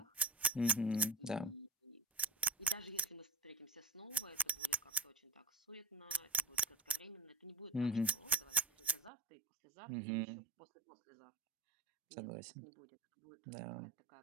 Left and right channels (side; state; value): left; drops out; at 9.1 s